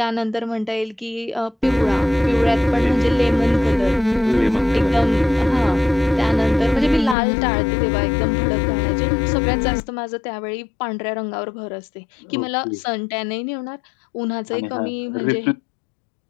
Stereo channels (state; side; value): drops out; right; at 7.2 s